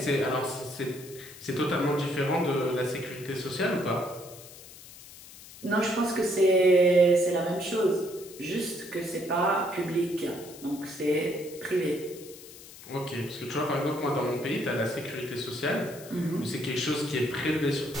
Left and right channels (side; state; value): left; noise; hiss, 17 dB below the sound